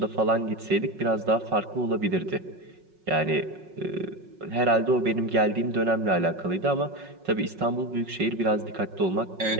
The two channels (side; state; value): left; late; 5.4 ms